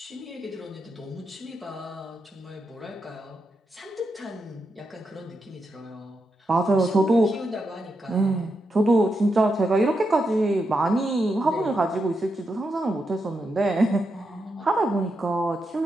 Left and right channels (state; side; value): normal; both; correlation 0.85